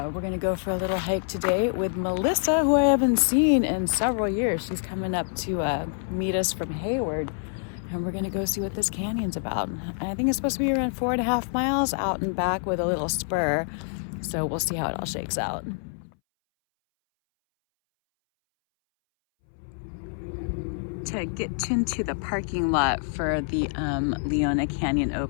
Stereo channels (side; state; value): right; silent; 61 dB below the other